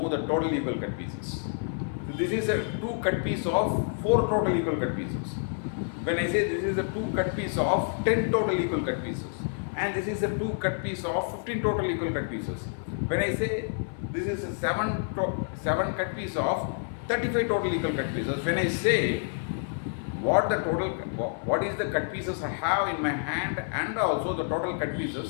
the total equal cut pieces. So this is a 2 cut piece of 4 total equal cut pieces. When I say this is a 2 cut piece of 10 total equal cut pieces, and this is a 2 cut piece of 15 total equal cut pieces. When I say this is a 7 cut piece of 35 total equal cut pieces, when I say what is the cut pieces I have in my hand and also the total cut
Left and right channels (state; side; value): silent; right; 56 dB below the other